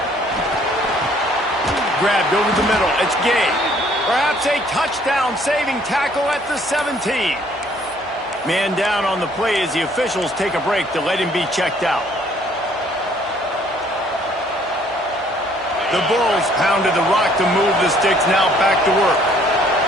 Grabbed over the middle. It's Gay. Perhaps a touchdown-saving tackle at the 17. Man down on the play as the officials take a break to let him be checked out. The Bulls pounded the rock to move the sticks, now back to work.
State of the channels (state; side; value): normal; both; correlation 0.61